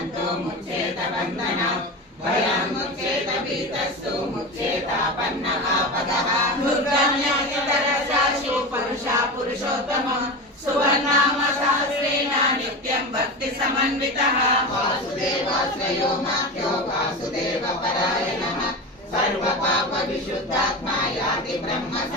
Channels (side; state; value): both; normal; correlation 0.24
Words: मुच्येत बन्धनात् भयं मुच्येत भीतस्तु मुच्येतापन्नः पदः दुर्गम्यतरसाशु पुरुषा पुरुषोत्तमः सुवर्णाम सहस्रेण नित्यं भक्ति समन्वितः वासुदेवाश्रयो माख्यो वासुदेव परायणः सर्वपाप विशुद्धात्मा याति ब्रह्म